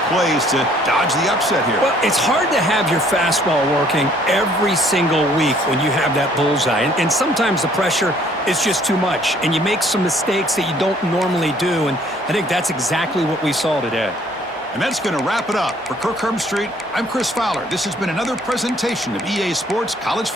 plays to dodge the upset here. Well, it's hard to have your fastball working every single week when you have that bullseye. And sometimes the pressure is just too much, and you make some mistakes that you don't normally do, and I think that's exactly what we saw today. And that's going to wrap it up. For Kirk Herbstreit, I'm Chris Fowler. This has been another presentation of EA Sports College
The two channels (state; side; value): normal; both; correlation 0.61